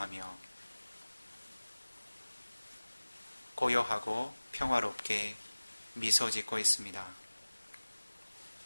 고요하고 평화롭게 미소 짓고 있습니다.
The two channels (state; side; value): inverted; both; correlation -1.00